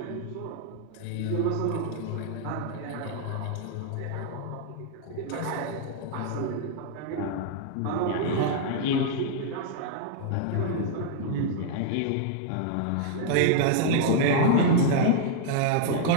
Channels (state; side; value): different; both; correlation -0.01